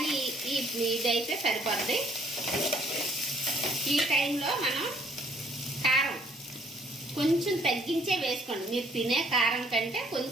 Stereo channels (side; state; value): both; normal; correlation 0.63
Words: ఇదైతే సరిపోద్ది. ఈ టైంలో మనం కారం కొంచెం తగ్గించే వేసుకోండి. మీరు తినే కారం కంటే